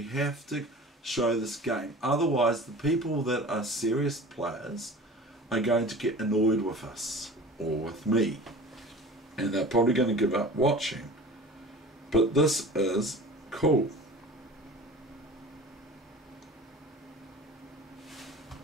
have to show this game. Otherwise, the people that are serious players are going to get annoyed with us or with me, and they're probably going to give up watching. But this is cool.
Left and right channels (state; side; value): normal; both; correlation 0.40